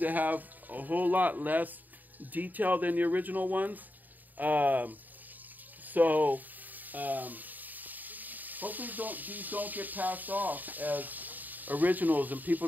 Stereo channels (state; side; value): late; left; 0.085 ms